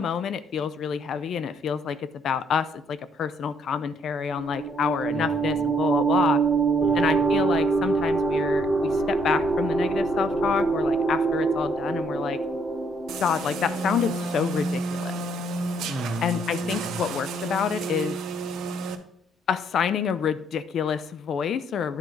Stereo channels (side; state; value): both; normal; correlation 0.68